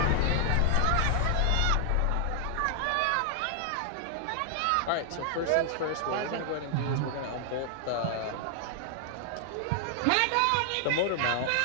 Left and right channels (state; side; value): different; both; correlation 0.00